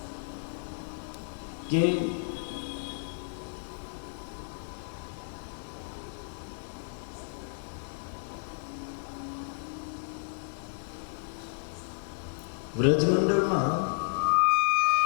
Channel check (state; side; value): silent; right; digital silence